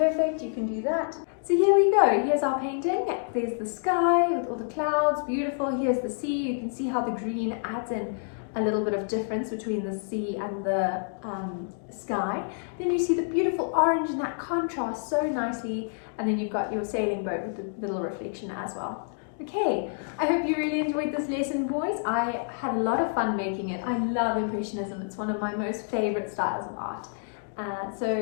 you can do that. So here we go, here's our painting. There's the sky with all the clouds, beautiful. Here's the sea. You can see how the green adds in a little bit of difference between the sea and the sky. Then you see the beautiful orange and that contrasts so nicely. And then you've got your sailing boat with the little reflection as well. Okay, I hope you really enjoyed this lesson, boys. I had a lot of fun making it. I love Impressionism. It's one of my most favorite styles of art.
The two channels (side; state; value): right; silent; digital silence